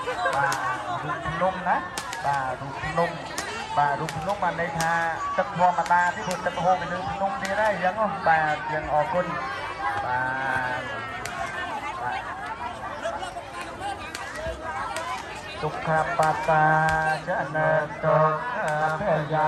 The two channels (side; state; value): both; identical; correlation 1.00